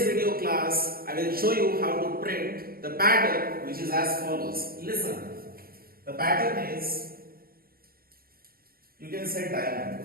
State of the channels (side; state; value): left; late; 0.43 ms